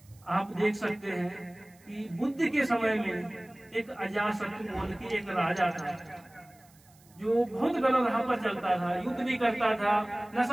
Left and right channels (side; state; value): right; noise; hiss, 29 dB below the sound